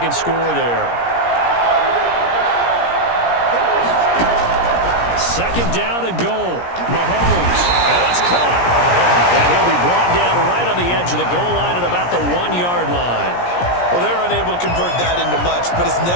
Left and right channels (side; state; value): right; late; 17 ms